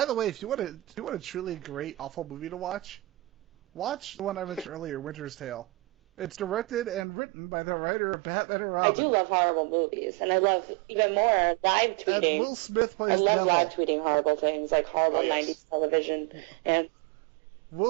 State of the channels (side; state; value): left; drops out; at 7.1 s